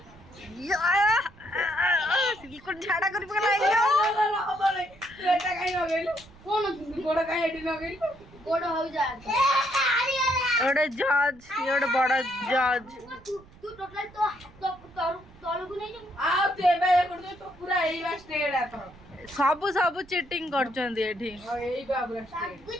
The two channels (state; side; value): noise; right; rumble, 24 dB below the sound